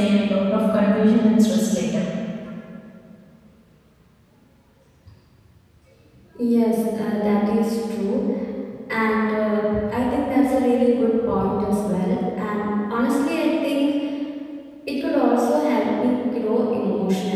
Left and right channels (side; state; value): both; identical; correlation 1.00